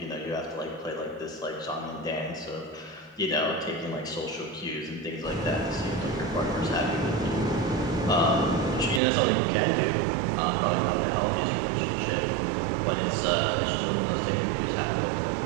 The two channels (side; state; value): left; drops out; at 9.0 s